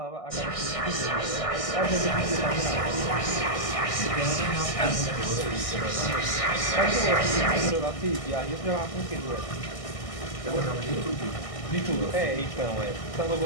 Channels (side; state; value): right; late; 1.6 ms